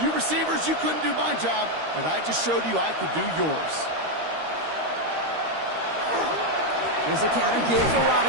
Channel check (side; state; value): left; late; 13 ms